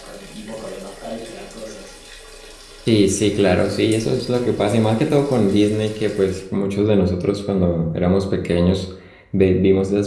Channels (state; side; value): identical; both; correlation 1.00